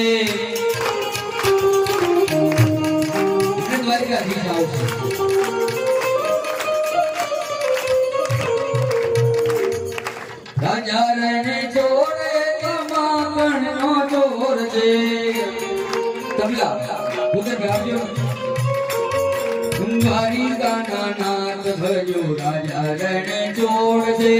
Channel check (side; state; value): both; identical; correlation 1.00